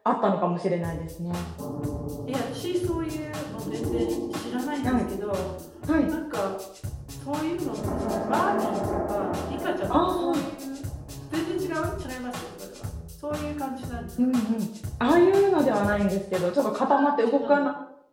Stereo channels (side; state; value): both; identical; correlation 1.00